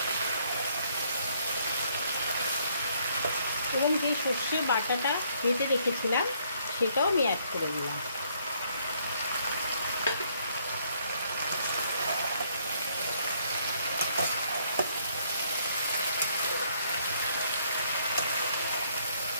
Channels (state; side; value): inverted; both; correlation -0.68